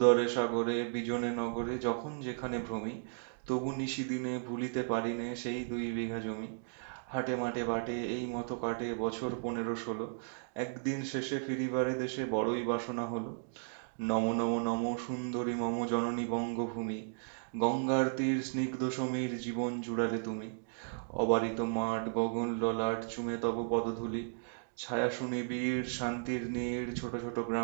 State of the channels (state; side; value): silent; left; digital silence